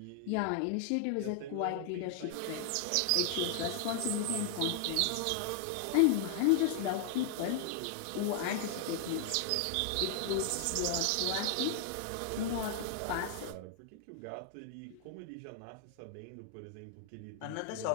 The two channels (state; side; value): different; both; correlation 0.00